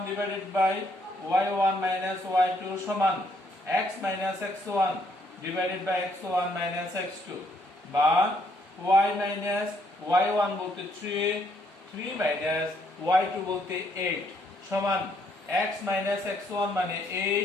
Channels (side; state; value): both; normal; correlation 0.70